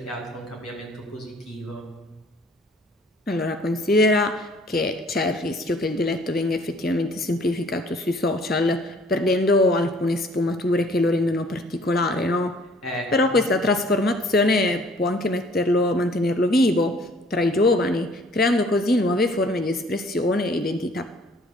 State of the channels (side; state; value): both; normal; correlation 0.56